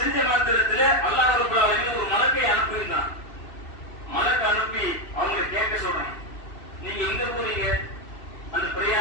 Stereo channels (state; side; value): late; right; 2.7 ms